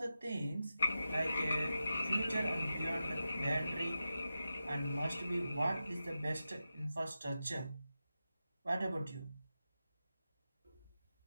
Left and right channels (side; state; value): both; inverted; correlation -0.91